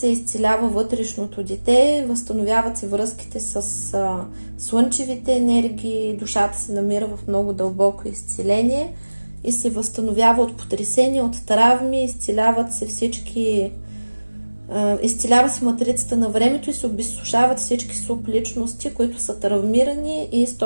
изцелява вътрешното дете, възстановяват се връзките с слънчевите енергии, душата се намира в много дълбоко изцеление и се възстановява от потресения, от травми, изцеляват се изцелява се матрицата на времето и се обезсушават всички субличности, които са травмирани и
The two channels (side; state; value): both; inverted; correlation -1.00